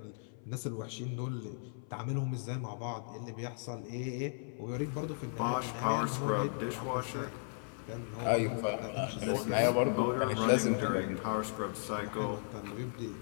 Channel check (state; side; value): silent; right; 54 dB below the other